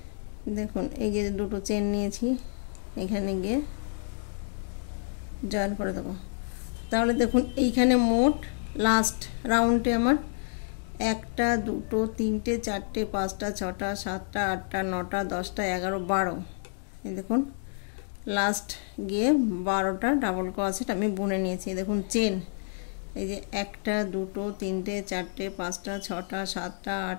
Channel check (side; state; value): right; silent; digital silence